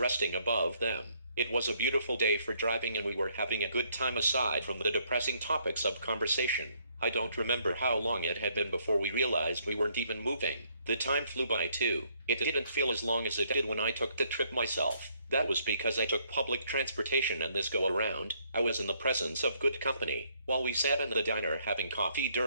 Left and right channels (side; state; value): both; inverted; correlation -0.69